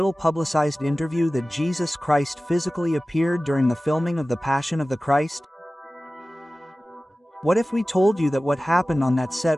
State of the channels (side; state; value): both; normal; correlation 0.96